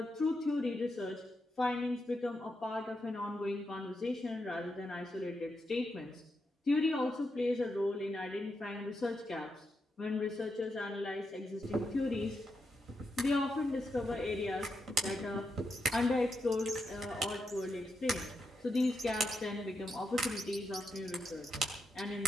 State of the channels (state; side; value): normal; both; correlation 0.84